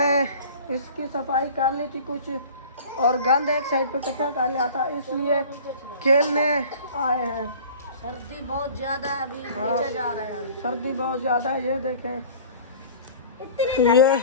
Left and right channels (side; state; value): both; inverted; correlation -0.44